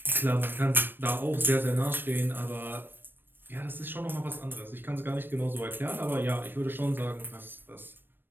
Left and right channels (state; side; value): late; left; 0.096 ms